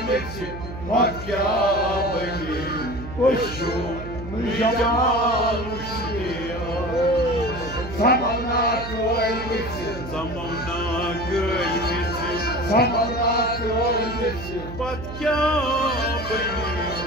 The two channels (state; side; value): noise; right; hum, 10 dB below the sound